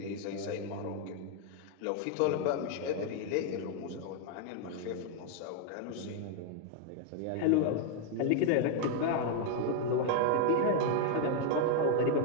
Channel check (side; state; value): both; different; correlation 0.00